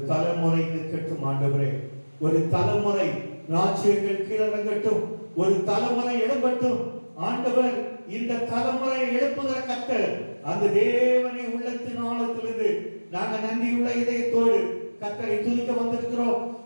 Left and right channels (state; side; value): inverted; both; correlation -1.00